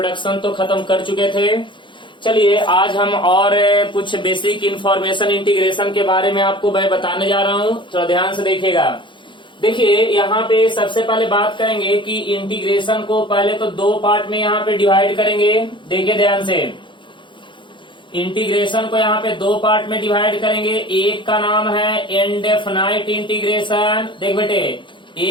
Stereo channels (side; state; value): right; late; 0.23 ms